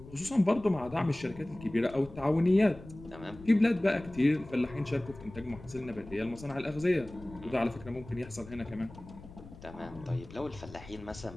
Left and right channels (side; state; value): left; noise; rumble, 17 dB below the sound